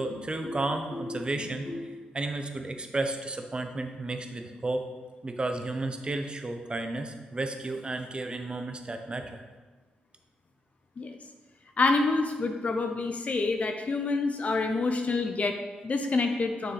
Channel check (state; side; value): normal; both; correlation 0.81